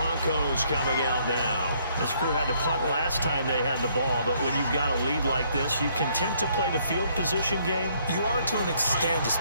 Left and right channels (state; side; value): inverted; both; correlation -0.67